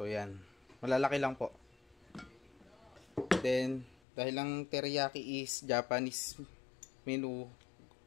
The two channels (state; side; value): drops out; right; at 4.0 s